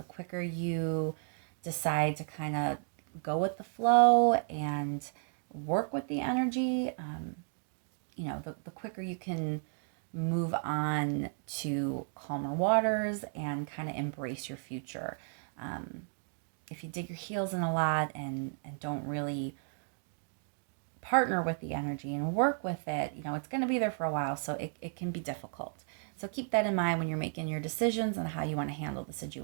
quicker you decide to kind of go with the flow and work with the energy, the quicker you can move on to calmer waters and kind of embrace your future. If you dig your heels in a lot and don't really partner with the energy and work with it, it's going to be there for a while, so it can be difficult. So keep that in mind when you're making your decisions and how you want to handle the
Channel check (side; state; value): left; silent; 55 dB below the other